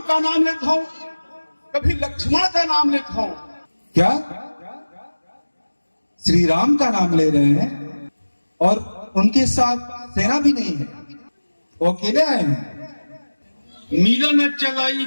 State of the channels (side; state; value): both; inverted; correlation -1.00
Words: का नाम लेता हो, कभी लक्ष्मण का नाम लेता हो। क्या श्री राम का नाम ले रहे हैं और उनके साथ सेना भी नहीं है, वो अकेले आए हैं। मिलन चलाई